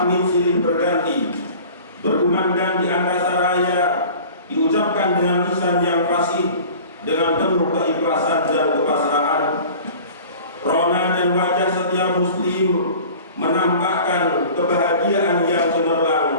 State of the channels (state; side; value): inverted; both; correlation -0.43